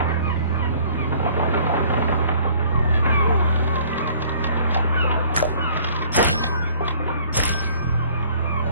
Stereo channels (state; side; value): inverted; both; correlation -0.55